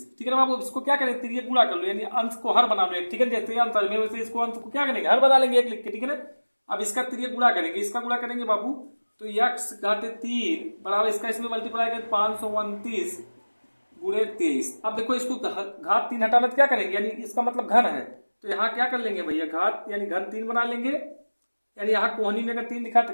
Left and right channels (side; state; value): both; inverted; correlation -1.00